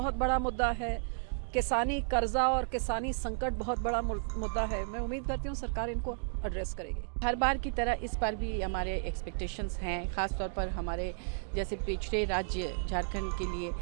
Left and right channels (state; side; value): silent; left; digital silence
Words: बड़ा मुद्दा है, किसानी कर्जा और किसानी संकट बहुत बड़ा मुद्दा है। मैं उम्मीद करती हूँ सरकार इनको एड्रेस करेगी। हर बार की तरह इस बार भी हमारे एक्सपेक्टेशंस हैं, ख़ास तौर पर हमारे जैसे पिछड़े राज्य झारखंड के लिए